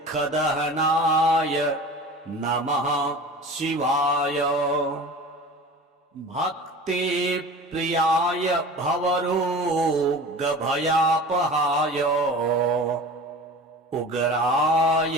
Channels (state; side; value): normal; both; correlation 0.37